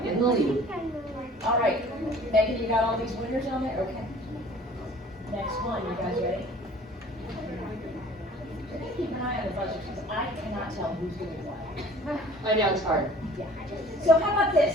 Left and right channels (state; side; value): normal; both; correlation 0.49